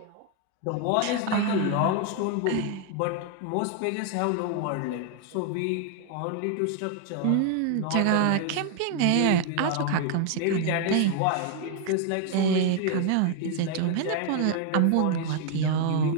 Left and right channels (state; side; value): different; both; correlation 0.00